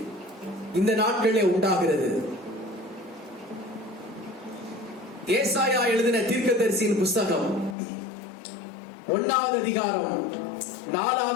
இந்த நாட்களிலே உண்டாகிறது. ஏசாயா எழுதின தீர்க்கதரிசியின் புஸ்தகம் 1வது அதிகாரம்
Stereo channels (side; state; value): right; drops out; at 7.8 s